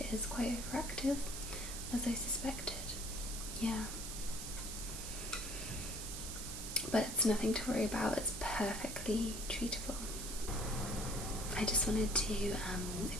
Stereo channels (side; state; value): right; noise; hiss, 6 dB below the sound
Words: is quite overactive, as I suspected. Yeah. But it's nothing to worry about, it's perfectly treatable. I just wanted to